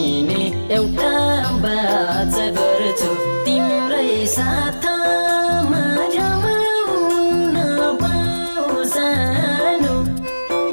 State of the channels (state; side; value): inverted; both; correlation -1.00